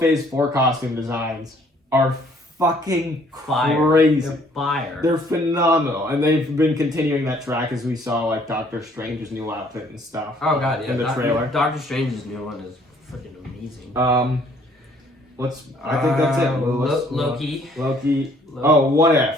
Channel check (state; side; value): normal; both; correlation 0.61